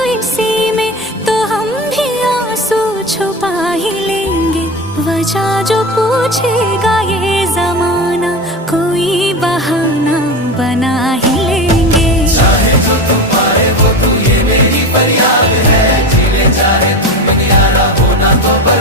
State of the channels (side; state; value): both; normal; correlation 0.24